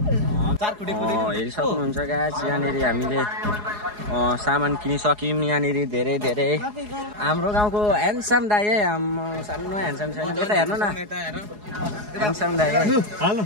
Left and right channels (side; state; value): left; late; 4.8 ms